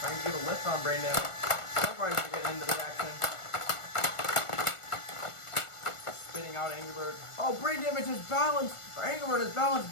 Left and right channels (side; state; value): right; late; 1.4 ms